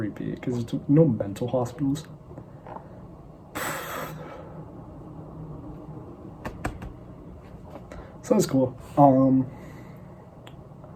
because it's no mental hospitals. So that's cool.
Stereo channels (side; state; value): both; identical; correlation 1.00